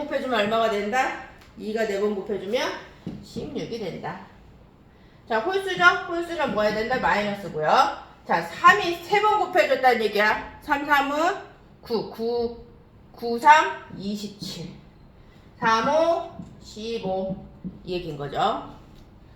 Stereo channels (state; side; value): identical; both; correlation 1.00